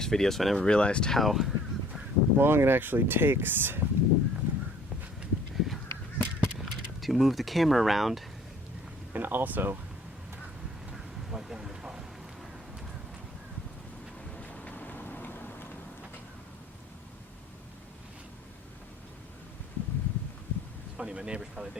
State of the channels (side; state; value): both; normal; correlation 0.55